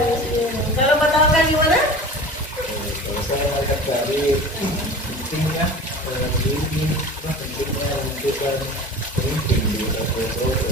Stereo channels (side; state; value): both; normal; correlation 0.36